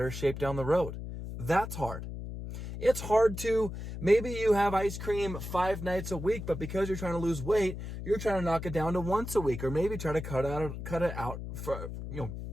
shape down the road. That's hard. It's hard to, maybe you have ice cream 5 nights a week, but because you're trying to lose weight, you're trying to knock it down to once a week, or maybe try to cut it out for,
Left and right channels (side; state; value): left; noise; hum, 8 dB below the sound